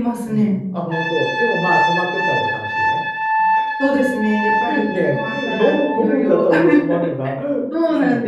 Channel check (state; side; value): identical; both; correlation 1.00